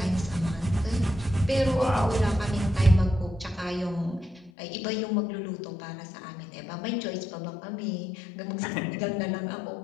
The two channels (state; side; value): drops out; right; at 4.5 s